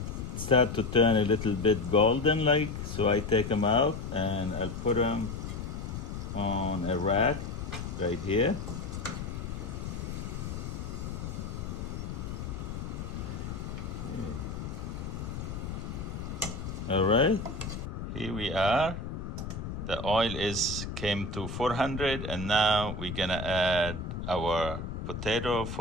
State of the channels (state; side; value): noise; left; rumble, 6 dB below the sound